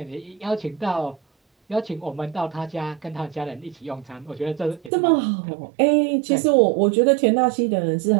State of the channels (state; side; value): drops out; left; at 4.9 s